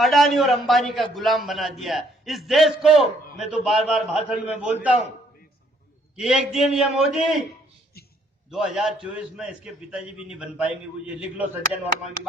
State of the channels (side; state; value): both; normal; correlation 0.66